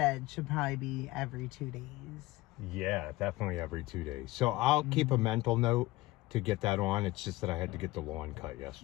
should probably be every 2 days. Yeah, definitely every 2 days. So I'll keep a mental note to get that on. It's just that I had to get the lawn cut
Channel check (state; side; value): quieter; right; 19.2 dB